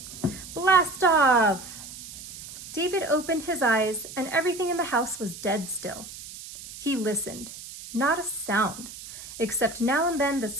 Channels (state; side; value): noise; right; hiss, 13 dB below the sound